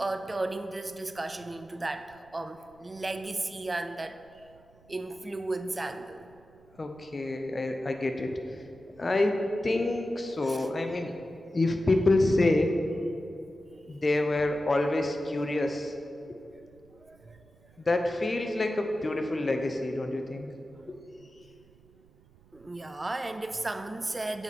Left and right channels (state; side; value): noise; right; rumble, 27 dB below the sound